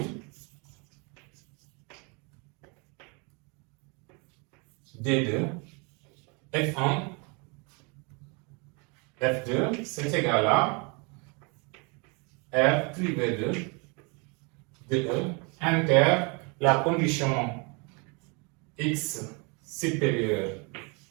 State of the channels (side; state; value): left; quieter; 31.8 dB